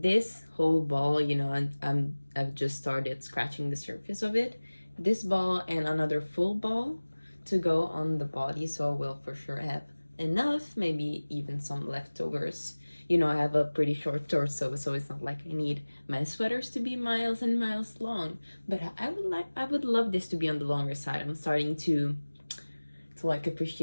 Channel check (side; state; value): both; inverted; correlation -1.00